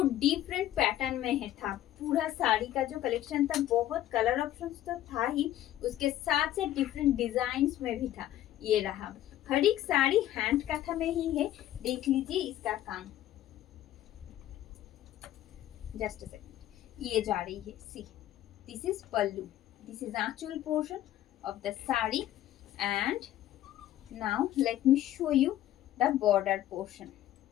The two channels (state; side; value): quieter; right; 13.1 dB